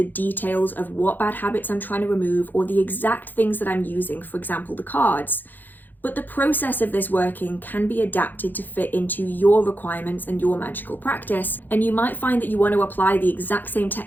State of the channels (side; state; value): right; late; 0.087 ms